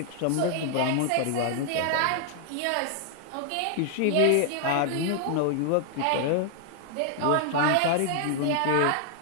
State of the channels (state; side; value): different; both; correlation 0.00